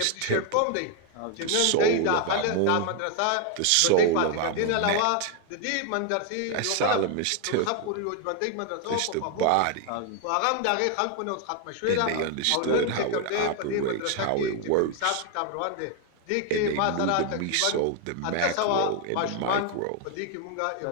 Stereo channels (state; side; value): different; both; correlation 0.01